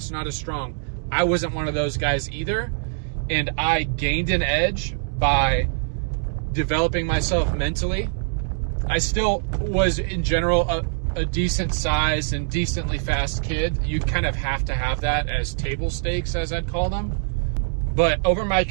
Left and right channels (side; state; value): left; silent; digital silence